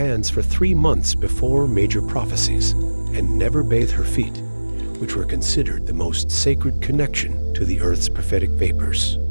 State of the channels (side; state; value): both; inverted; correlation -1.00